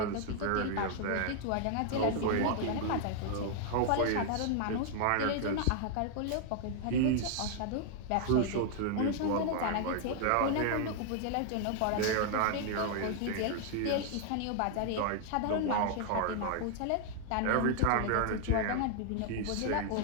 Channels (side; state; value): both; different; correlation -0.01